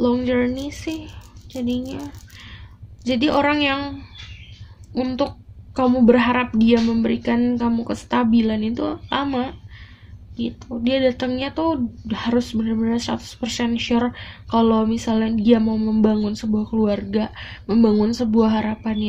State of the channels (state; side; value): identical; both; correlation 1.00